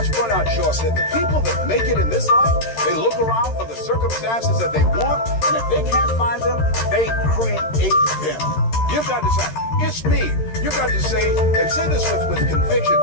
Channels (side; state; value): right; late; 13 ms